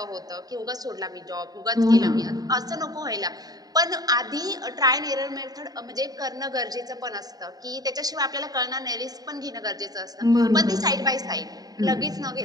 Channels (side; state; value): left; late; 0.18 ms